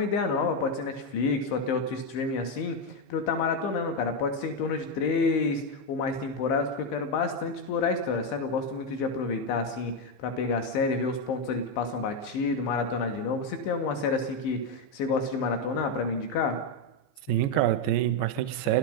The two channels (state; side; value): late; right; 15 ms